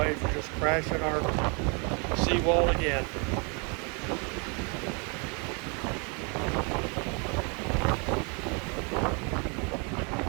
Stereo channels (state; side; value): quieter; left; 34.2 dB